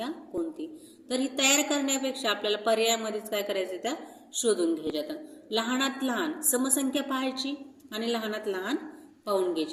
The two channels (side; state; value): both; identical; correlation 1.00